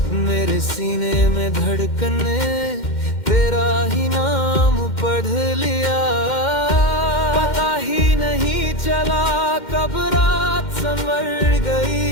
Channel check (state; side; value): late; right; 2.1 ms